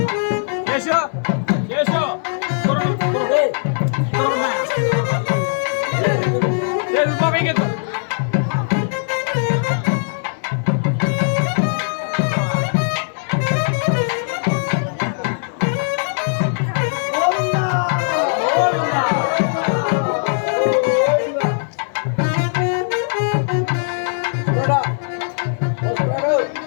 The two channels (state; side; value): silent; right; digital silence